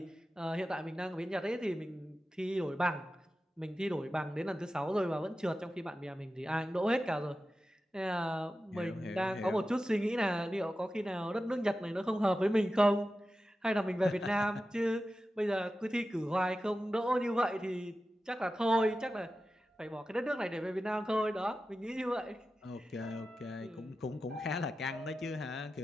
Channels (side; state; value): both; normal; correlation 0.93